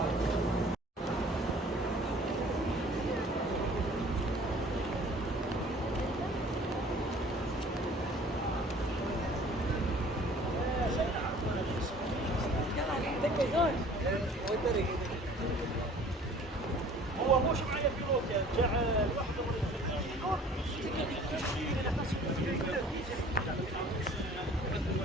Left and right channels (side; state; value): both; normal; correlation 0.50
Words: هو مش معايا في روكا جاء لوحده